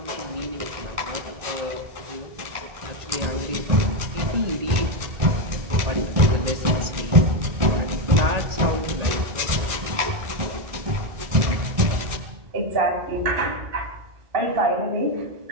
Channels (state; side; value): late; left; 1.7 ms